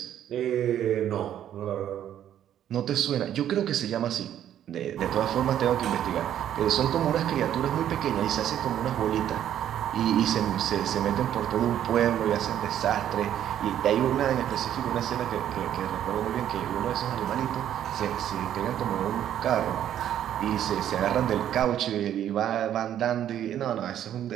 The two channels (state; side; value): quieter; left; 10.8 dB